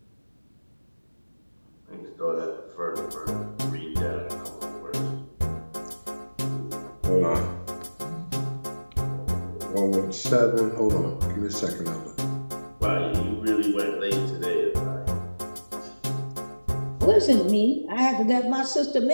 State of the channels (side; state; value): both; inverted; correlation -1.00